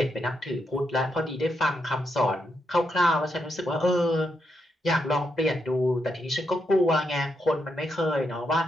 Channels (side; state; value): both; normal; correlation 0.82